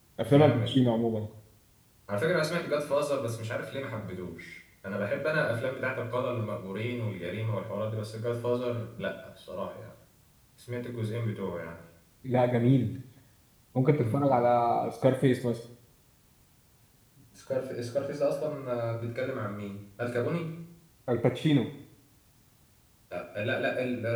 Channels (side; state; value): both; identical; correlation 1.00